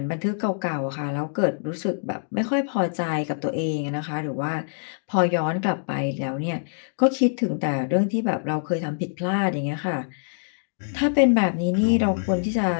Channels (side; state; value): right; silent; digital silence